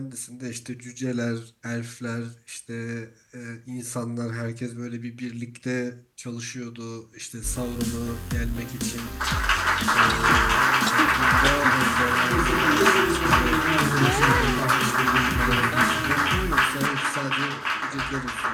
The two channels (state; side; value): identical; both; correlation 1.00